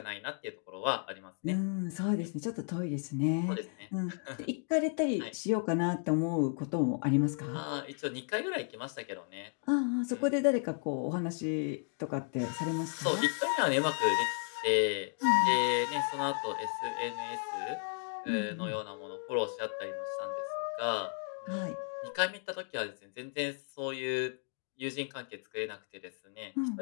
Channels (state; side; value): silent; right; 55 dB below the other